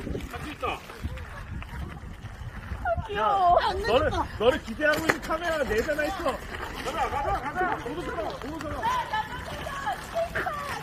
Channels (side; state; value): both; identical; correlation 1.00